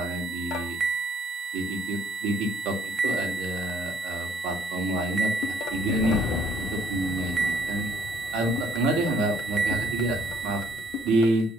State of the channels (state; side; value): normal; both; correlation 0.65